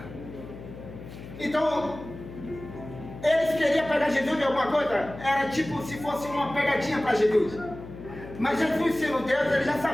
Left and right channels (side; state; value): left; noise; hum, 14 dB below the sound